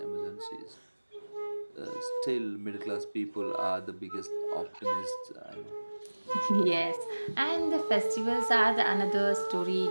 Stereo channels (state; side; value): inverted; both; correlation -1.00